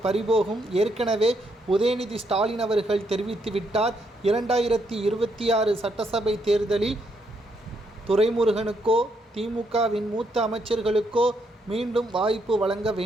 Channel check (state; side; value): normal; both; correlation 0.76